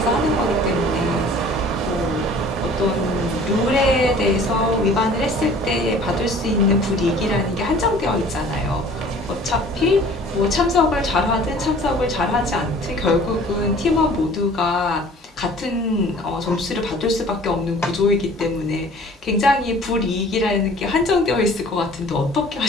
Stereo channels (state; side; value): normal; both; correlation 0.49